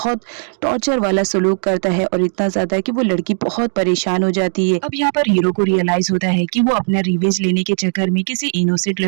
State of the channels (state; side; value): silent; left; digital silence